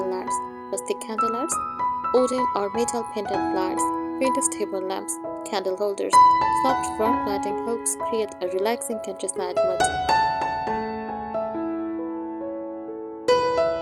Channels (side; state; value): both; identical; correlation 1.00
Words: lights, rustic candlelights, wooden or metal pendant lights, vintage table lamps, candle holders. Soft warm lighting helps create a relaxing countryside mood.